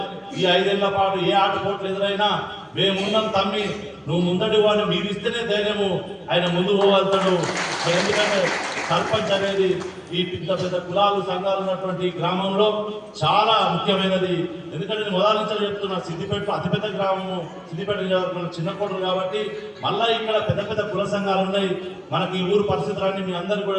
ఈ 5 ఏళ్ల పాటు ఏ ఆటపోట్లు ఎదురైనా మేమున్నాం తమ్మి, నువ్వు ముందడి వాడిని మీరు ఇస్తేనే ధైర్యము ఆయన ముందు పోగలుగుతాడు. ఎందుకంటే సర్పంచ్ అనేది ఈ పెద్ద కులాలు సంఘాలు ఉన్నటువంటి గ్రామంలో చాలా ముఖ్యమైనది. ఎందుకంటే నేను మొదటి నుంచి చెప్తున్నా, సిద్దిపేట అతిపెద్ద గ్రామము, సిద్దిపేట చిన్న కోటలు కాబట్టి మళ్ళా ఇక్కడ పెద్ద కుల సంఘాలు ఉన్నాయి. మనకి ఈ ఊరు పరిస్థితులన్నీ మీ అందరికీ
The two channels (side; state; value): both; identical; correlation 1.00